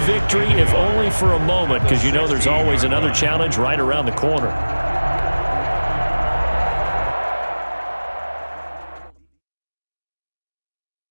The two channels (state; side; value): inverted; both; correlation -1.00